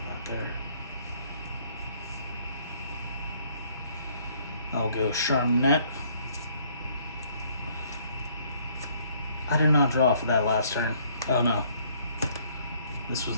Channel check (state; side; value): inverted; both; correlation -0.63